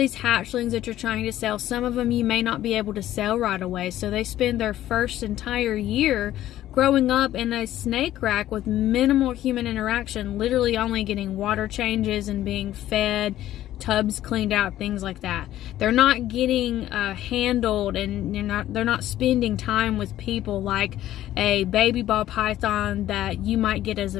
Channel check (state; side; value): quieter; right; 13.3 dB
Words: hatchlings that you're trying to sell, some of them you may not be able to sell right away, so they spend their first entire year growing up in a snake rack with minimal human interaction, literally only getting water changes and being fed, tubs cleaned out, things like that. They're not getting handled, and they're not spending time with people like a baby ball python that you might get as